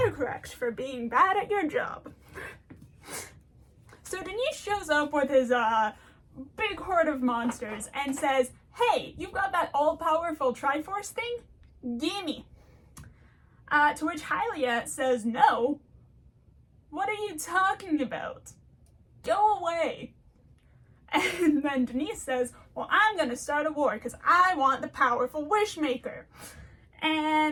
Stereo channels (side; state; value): both; identical; correlation 1.00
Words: for being bad at your job. So Denise shows up with his big horde of monsters and says, "Hey, you've got that all-powerful Triforce thing? Gimme." To which Hylia says, "No. What are you talking about? Go away." And then Denise says, "Well, I'm gonna start a war because I want the powerful Wishmaker."